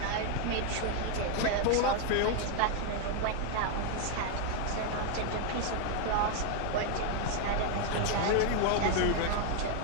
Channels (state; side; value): different; both; correlation 0.00